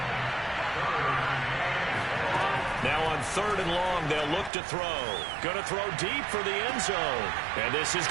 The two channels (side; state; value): left; drops out; at 4.5 s